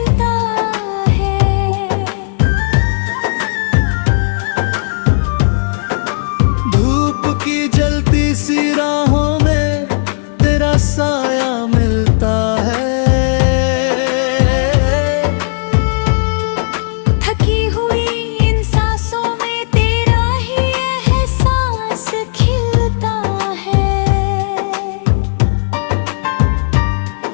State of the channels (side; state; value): right; silent; 66 dB below the other